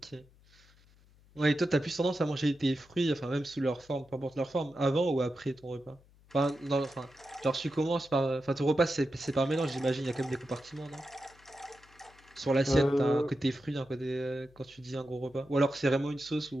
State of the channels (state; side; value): noise; left; hum, 28 dB below the sound